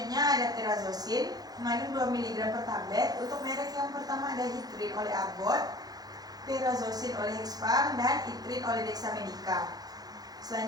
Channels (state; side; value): late; left; 0.19 ms